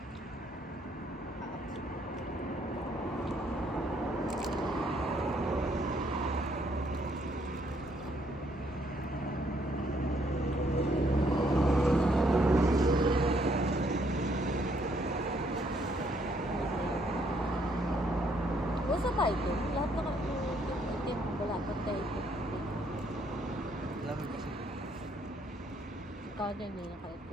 Basta tayo po. Lahat na itim. Wala pa tayo po. Lamig kasi. Ikaw din yung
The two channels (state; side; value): normal; both; correlation 0.69